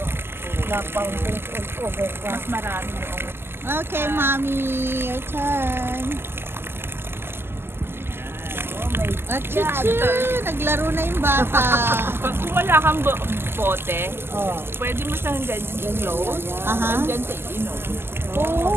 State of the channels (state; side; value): late; left; 0.12 ms